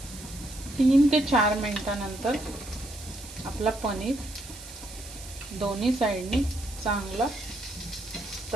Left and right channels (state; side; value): noise; right; hiss, 15 dB below the sound